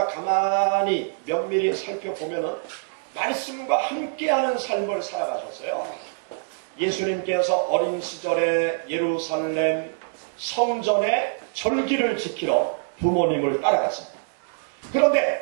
가만히 면밀히 살펴보면은 말씀과 함께하는 삶을 살아가셨어요. 예수님께서 어린 시절에 예루살렘 성전의 절기를 지키러 부모님을 따라갔습니다.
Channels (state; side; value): silent; left; digital silence